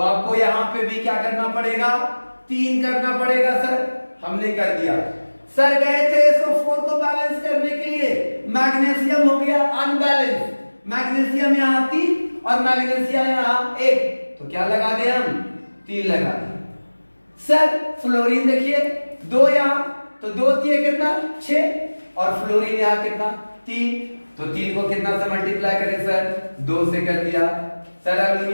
यहां पे भी क्या करना पड़ेगा 3 करना पड़ेगा। सर हमने कर दिया। सर गए थे SO4 को बैलेंस करने के लिए, मैग्नीशियम हो गया अनबैलेंस, मैग्नीशियम यहाँ 3 और मैग्नीशियम यहाँ 1, तो क्या लगा दे हम 3 लगा दे। सर फ्लोरीन देखिए 2 यहाँ, तो 2 दिए कितना 6, और फ्लोरीन यहाँ कितना 3, तो 3 को कितना से मल्टीप्लाई करें सर 2 से कर दिया। सर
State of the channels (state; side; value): inverted; both; correlation -1.00